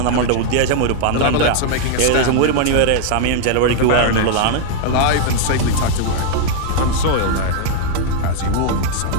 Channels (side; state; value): both; different; correlation 0.00